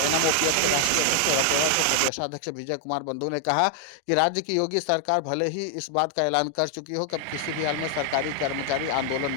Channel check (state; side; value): different; both; correlation 0.00